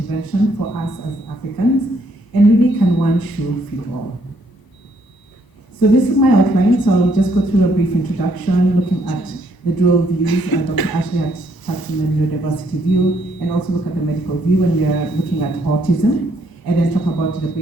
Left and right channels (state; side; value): late; right; 1.0 ms